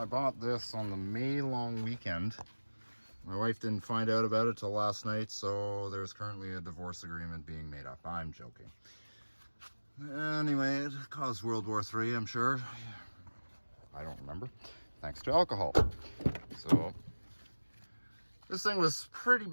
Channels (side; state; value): both; inverted; correlation -1.00